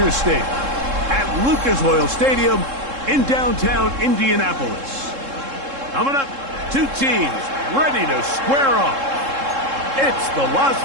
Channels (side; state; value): left; late; 3.7 ms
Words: State at Lucas Oil Stadium in downtown Indianapolis. Coming up, two teams ready to square off. It's the Las